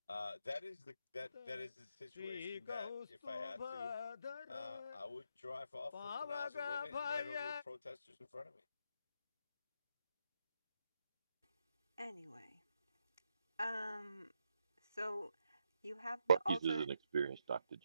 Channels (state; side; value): inverted; both; correlation -0.80